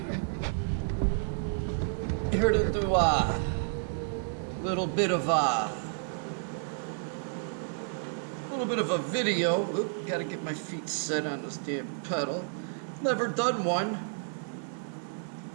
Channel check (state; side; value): silent; left; digital silence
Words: Here to do a little bit of a video. Oop, gotta get my feet set on this damn pedal. Never done one.